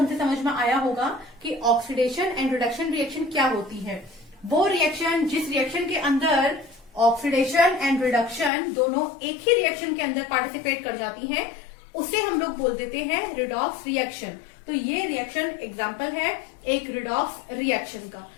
से समझ में आया होगा कि ऑक्सीडेशन एंड रिडक्शन रिएक्शन क्या होती है। वो रिएक्शन जिस रिएक्शन के अंदर ऑक्सीडेशन एंड रिडक्शन दोनों एक ही रिएक्शन के अंदर पार्टिसिपेट कर जाती हैं उसे हम लोग बोल देते हैं रिडॉक्स रिएक्शन। तो ये रिएक्शन एग्जाम्पल है एक रिडॉक्स रिएक्शन का।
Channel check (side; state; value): right; drops out; at 8.5 s